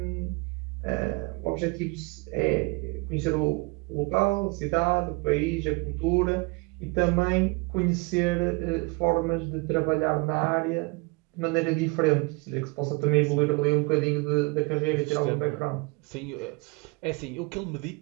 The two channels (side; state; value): left; quieter; 27.5 dB